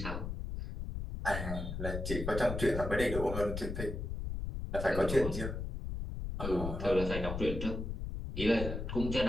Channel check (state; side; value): noise; left; rumble, 4 dB below the sound